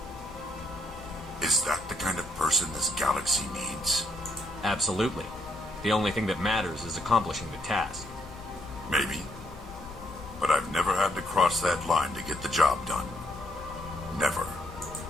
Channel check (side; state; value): both; normal; correlation 0.72